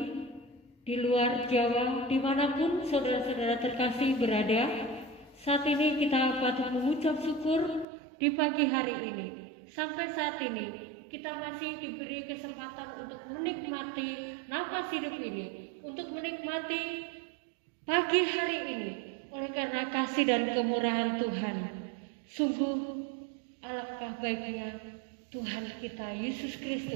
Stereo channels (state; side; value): drops out; left; at 7.9 s